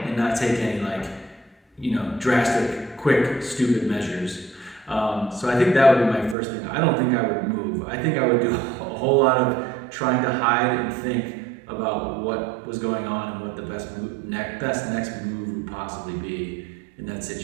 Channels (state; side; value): drops out; left; at 6.4 s